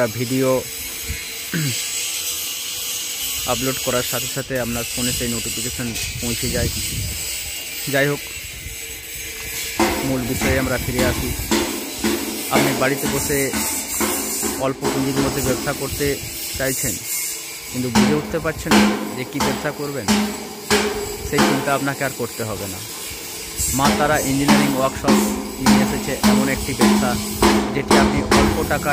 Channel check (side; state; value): both; identical; correlation 1.00